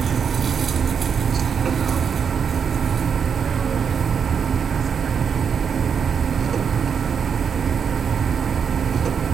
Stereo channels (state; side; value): quieter; left; 6.8 dB